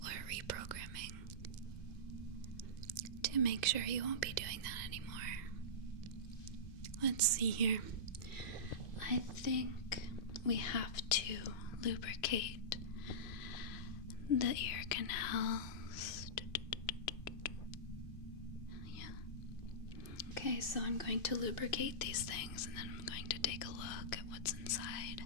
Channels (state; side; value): late; right; 2.5 ms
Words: or reprogramming to make sure you won't be doing that anymore. Let's see here. I think we have to lubricate the ear canals. Yeah. Okay, so I'm going to lubricate these things and then I'm going to take a look at what's inside.